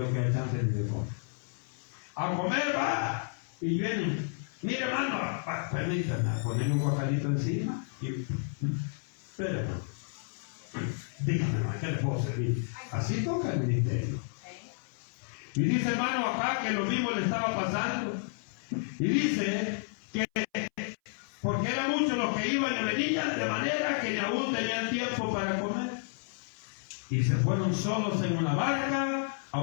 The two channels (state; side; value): silent; right; 57 dB below the other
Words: queda chance ni de comer. A comer va y vienen. Mire, hermano, permítame ponerle un guacalito encima y espérame. Dígame, hermano, ¿qué le puedo servir? Así toca el ministerio. Y dice, hermano, acá que lo mismo le estaba pasando. Y dice que porque eran muchos los que iban y venían, de manera que ni aún tenían tiempo para comer. Y se fueron solos en una barca a